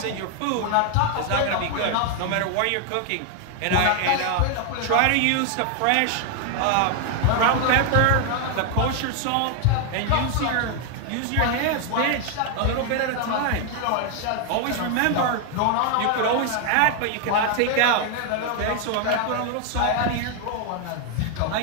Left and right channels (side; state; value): both; different; correlation 0.01